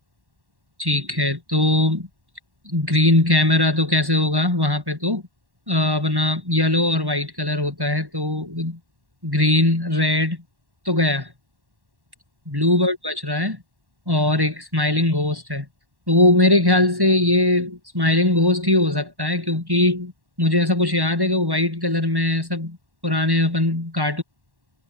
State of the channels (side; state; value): left; late; 1.1 ms